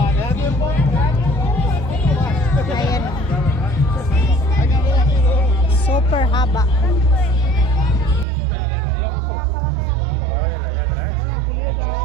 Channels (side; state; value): left; drops out; at 8.2 s